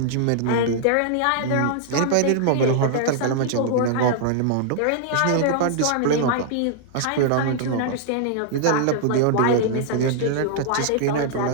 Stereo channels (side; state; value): both; different; correlation -0.01